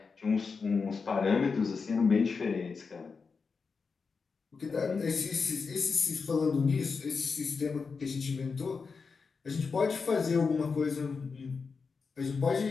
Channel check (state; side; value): quieter; right; 5.0 dB